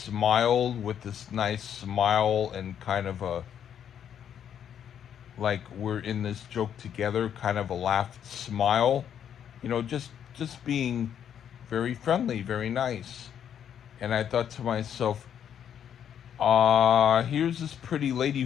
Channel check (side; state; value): right; quieter; 9.1 dB